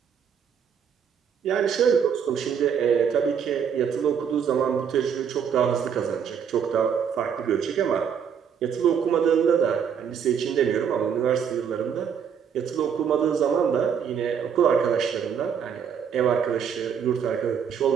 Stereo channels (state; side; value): quieter; left; 7.5 dB